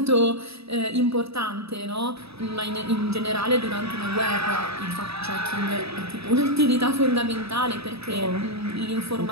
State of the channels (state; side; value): late; left; 0.78 ms